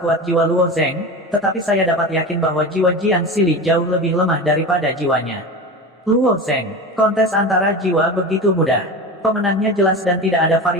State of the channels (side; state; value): both; normal; correlation 0.28